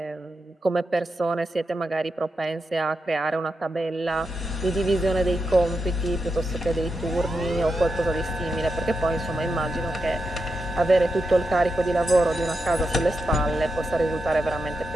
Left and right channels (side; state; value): both; normal; correlation 0.87